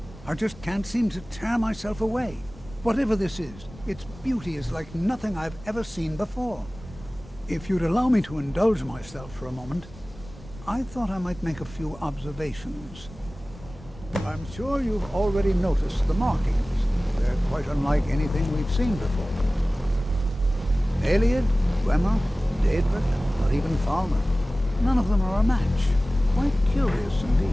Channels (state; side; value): normal; both; correlation 0.97